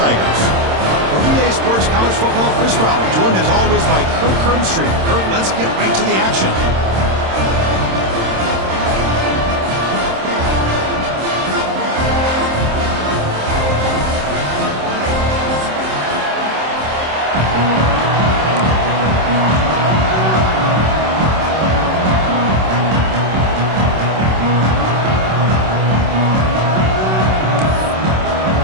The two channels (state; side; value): late; left; 26 ms